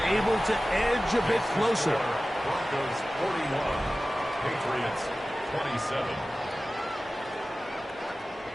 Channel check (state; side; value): normal; both; correlation 0.96